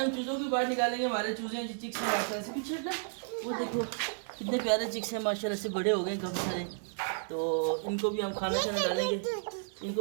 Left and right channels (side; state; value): left; silent; digital silence